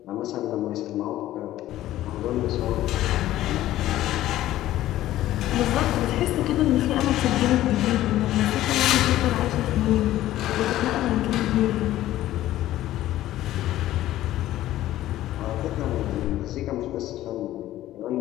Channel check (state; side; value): quieter; right; 14.3 dB